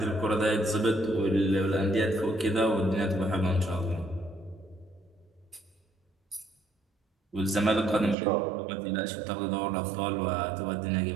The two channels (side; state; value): left; drops out; at 8.2 s